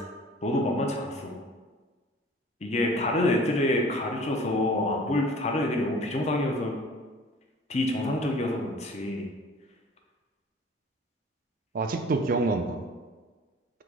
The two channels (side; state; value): both; normal; correlation 0.47